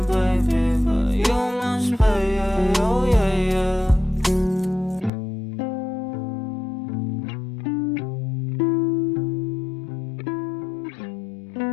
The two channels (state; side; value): drops out; right; at 5.1 s